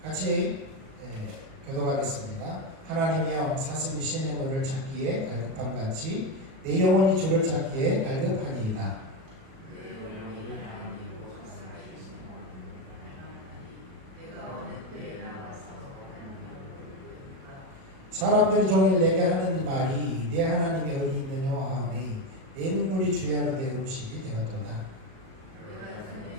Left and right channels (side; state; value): left; late; 37 ms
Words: 같이 교독하겠습니다. 하나님이여, 사슴이 신의 물을 찾기에 갈급함같이 내 영혼이 주를 찾기에 갈급하니이다. 사람들이 종일 내게 하는 말이 내 하나님이 어디 있느냐 하오니 내 눈물이 주야로 내 음식이 되었도다.